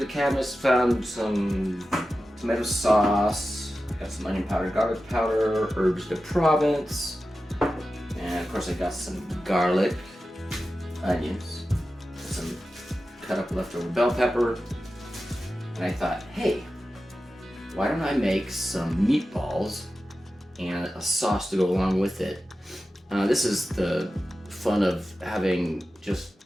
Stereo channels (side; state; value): both; normal; correlation 0.93